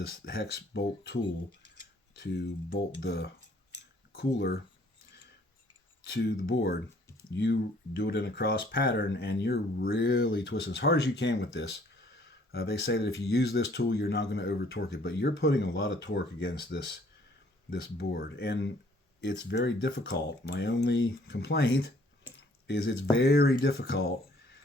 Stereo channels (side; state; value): both; normal; correlation 0.60